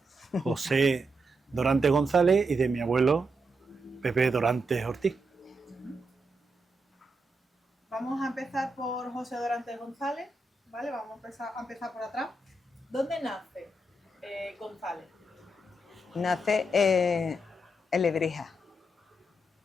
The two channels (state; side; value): normal; both; correlation 0.83